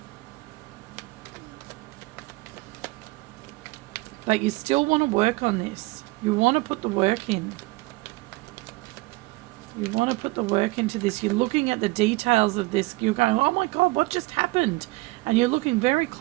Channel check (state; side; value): quieter; left; 22.4 dB